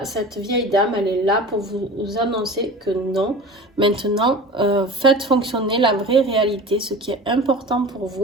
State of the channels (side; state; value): both; normal; correlation 0.36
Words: cette vieille dame, elle est là pour vous annoncer que non. Maintenant, faites fonctionner la vraie réalité, ce qui est important pour